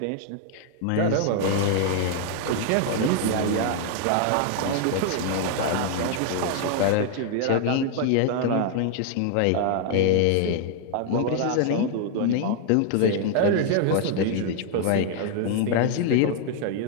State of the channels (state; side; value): different; both; correlation 0.00